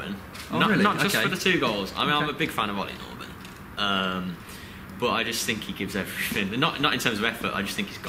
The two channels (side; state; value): both; identical; correlation 1.00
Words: Really? Not just for the 2 goals. I mean, I'm a big fan of Ollie Norben. But I just think he gives everything. Not in terms of effort. I just think he's